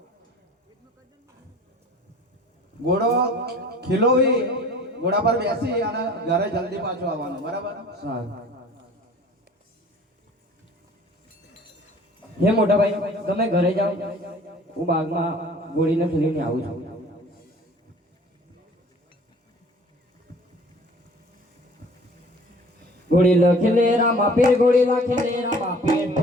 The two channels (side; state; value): both; normal; correlation 0.48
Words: ઘોડો ખીલોવી ઘોડા પર બેસી અને ઘરે જલ્દી પાછું આવવાનું, બરાબર? સારું. હે મોટા ભાઈ તમે ઘરે જાઓ, હું બાગમાં ગોળીને ફેરીને આવું છું. ગોળી લખે લે રામા પીર, ગોળી લખે લે રામા પીર,